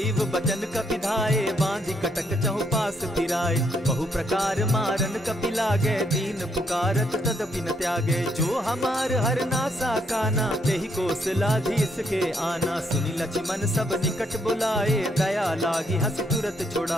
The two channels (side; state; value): both; normal; correlation 0.73